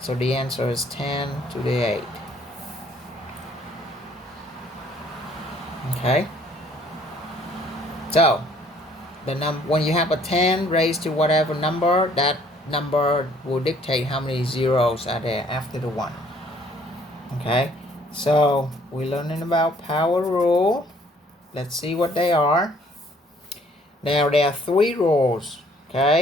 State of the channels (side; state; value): both; normal; correlation 0.60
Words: the answer is 10 to the 8. Okay. So when you have a 10 raised to whatever number, that number will dictate how many zeros are there after the 1. Okay. So we're learning about power rule. Let's see what they are. Now there are 3 rules.